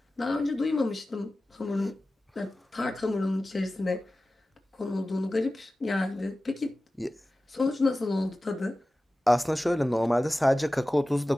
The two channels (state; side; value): normal; both; correlation 0.96